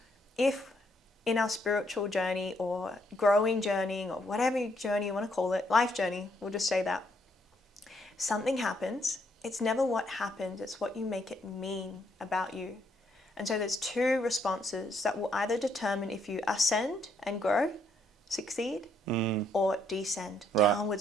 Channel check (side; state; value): both; normal; correlation 0.72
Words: if in our spiritual journey or growing journey or whatever journey you want to call it, life journey, we'll just say that, something happens, it's never what happens, it's what you make it mean about you. And so there's 2 responses that will either determine if you ascend and grow, succeed, or descend, downward